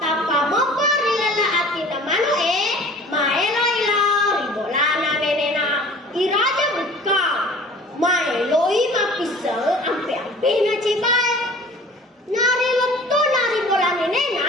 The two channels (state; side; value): normal; both; correlation 0.46